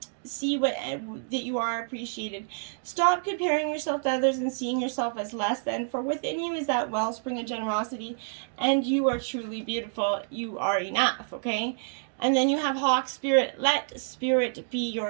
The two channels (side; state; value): left; silent; digital silence